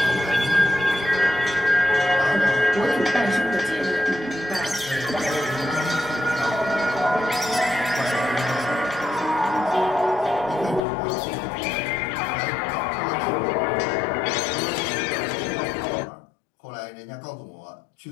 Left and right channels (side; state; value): right; drops out; at 10.9 s